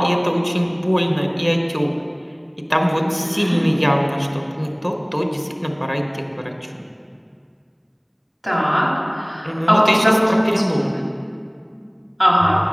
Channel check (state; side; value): identical; both; correlation 1.00